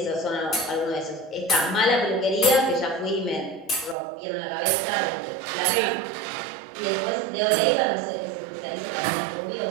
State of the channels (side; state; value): left; drops out; at 4.0 s